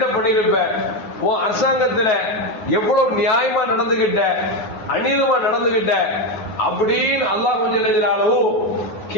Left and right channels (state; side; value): late; right; 9.3 ms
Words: பண்ணிருப்ப, உன் அரசாங்கத்துல எவ்வளவு நியாயமா நடந்துகிட்ட, அநீதமா நடந்துகிட்ட அப்படின்னு அல்லாஹ் கொஞ்சம்